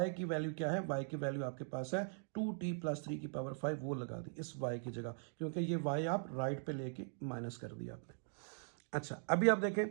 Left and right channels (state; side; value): silent; left; digital silence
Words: की वैल्यू क्या है, y की वैल्यू आपके पास है 2t प्लस 3 की पावर 5, वो लगा दी इस y की जगह, क्योंकि ये y आप राइट पे लेके माइनस कर दिया आपने। अच्छा, अभी आप देखें